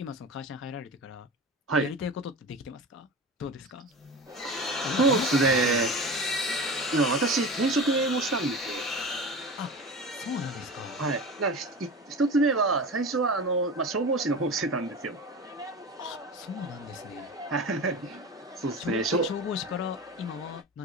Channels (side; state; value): both; normal; correlation 0.30